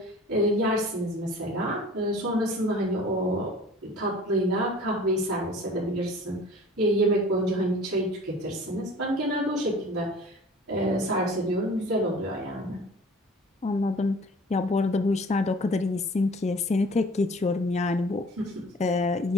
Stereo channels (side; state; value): both; normal; correlation 0.46